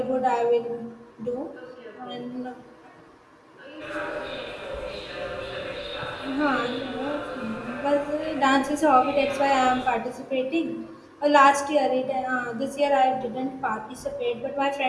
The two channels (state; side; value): identical; both; correlation 1.00